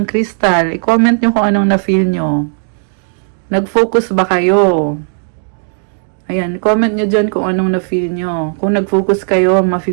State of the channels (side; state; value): left; silent; digital silence